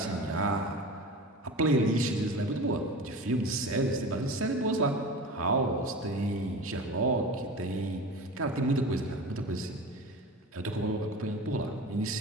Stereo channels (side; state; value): both; normal; correlation 0.33